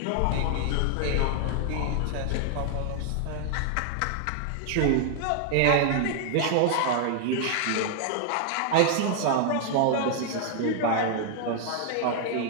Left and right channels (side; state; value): both; different; correlation 0.00